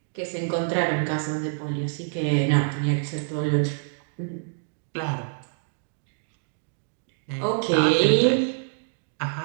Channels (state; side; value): silent; left; digital silence